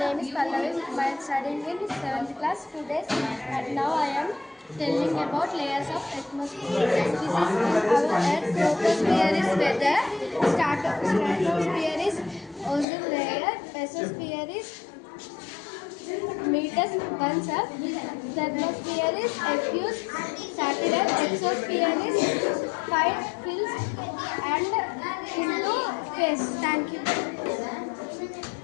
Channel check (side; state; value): right; drops out; at 12.9 s